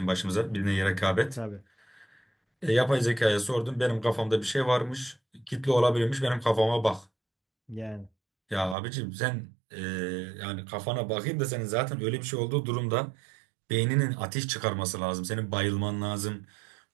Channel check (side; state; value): left; drops out; at 8.8 s